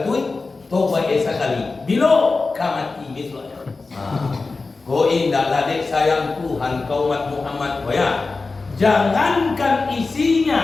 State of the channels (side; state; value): right; quieter; 3.9 dB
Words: tobat sekali. Bila kamati misalnya. Kau indahlah dek sayang Tuhan kau umat Muhammad ya. Jangankan